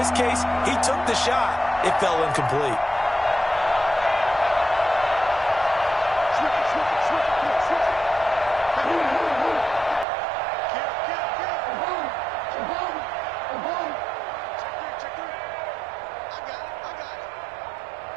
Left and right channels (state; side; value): drops out; left; at 10.1 s